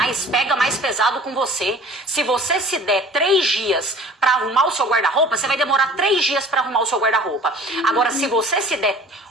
pega mais pesado com você. Se você se der 3 dias para arrumar o seu guarda-roupa, você vai demorar 3 dias para arrumar o seu guarda-roupa. Agora, se você se der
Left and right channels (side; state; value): both; normal; correlation 0.47